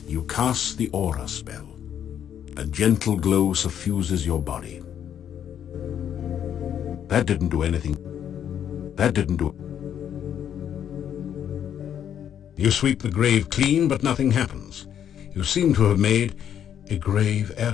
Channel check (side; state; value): right; quieter; 9.4 dB